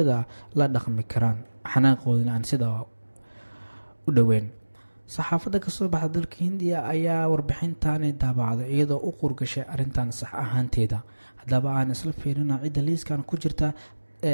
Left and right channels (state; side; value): inverted; both; correlation -1.00